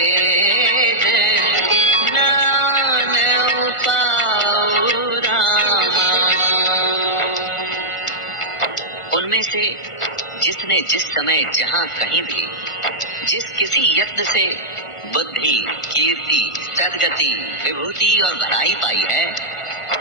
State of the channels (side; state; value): right; late; 1.5 ms